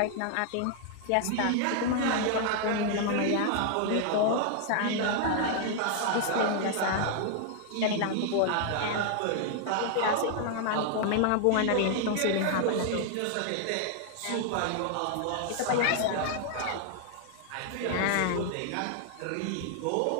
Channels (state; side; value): different; both; correlation 0.00